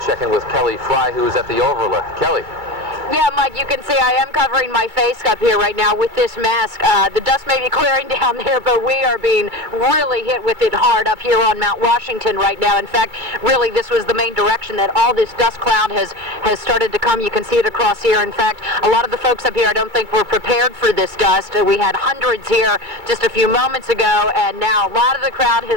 check in with Kelly Fry, who is at the overlook. Kelly. Yeah, Mike, you can see I am covering my face up here right now with this mask. The dust may be clearing down there, but we are being really hit with it hard up here on Mount Washington right now. In fact, really, this was the main direction that all this dust cloud has started to come. You can see it across here. In fact, a lot of the folks up here I don't think were prepared for this dust. We had hundreds here just a few moments ago, and now a lot of the crowd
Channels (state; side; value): late; left; 2.3 ms